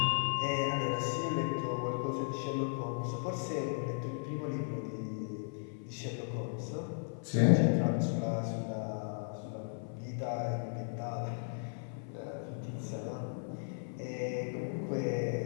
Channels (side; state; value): right; silent; 54 dB below the other